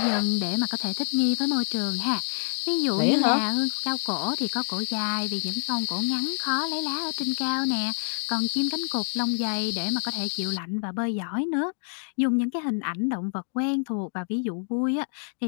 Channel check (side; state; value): right; silent; digital silence